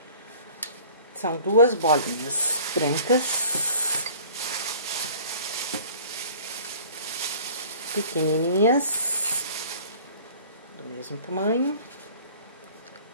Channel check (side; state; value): both; inverted; correlation -0.49